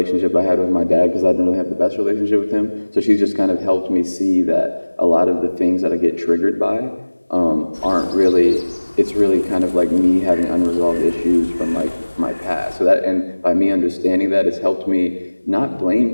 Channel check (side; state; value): both; inverted; correlation -1.00